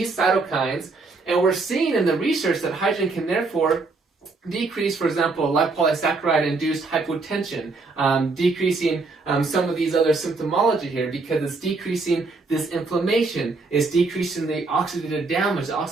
cytokines. And we're seeing in the research that hydrogen can therefore decrease, for example, lipopolysaccharide-induced hypotension, decreasing some of these other symptomology here because it's decreasing this inflammation, it's decreasing the oxidative damage, the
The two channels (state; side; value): quieter; left; 3.8 dB